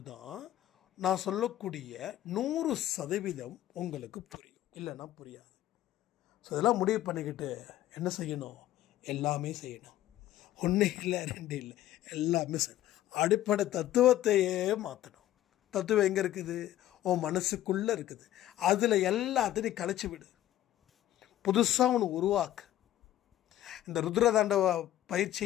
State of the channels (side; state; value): right; quieter; 13.4 dB